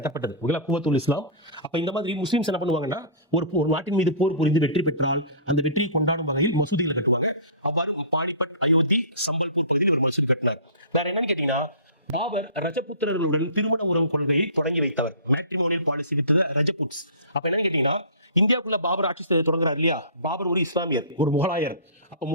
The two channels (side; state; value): both; inverted; correlation -0.38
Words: ஓகேங்களா? குவத்துல் இஸ்லாம். அப்ப இந்த மாதிரி முஸ்லிம்ஸ் என்ன பண்ணுவாங்கன்னா ஒரு நாட்டின் மீது போர் புரிந்து வெற்றி பெற்றால் அந்த வெற்றியை கொண்டாடும் வகையில் மசூதிகளை கட்டுவாங்க. அவ்வாறு பானிபட், அயோத்தி, சம்பல்பூர் பகுதியில் ஒரு மசூதி கட்டினார். வேற என்னன்னு கேட்டீங்கன்னா பாபர் ரஜபுத்திரர்களுடன் திருமண உறவு கொள்கையை தொடங்கி வைத்தவர். Matrimonial policy with Rajputs. அப்ப என்னன்னு கேட்டீங்கன்னா இந்தியாவுக்குள்ள பாபர் ஆட்சி தொடங்குறாரு இல்லையா? பாபர் ஒரு இஸ்லாமியர், ஒரு முகலாயர். அப்ப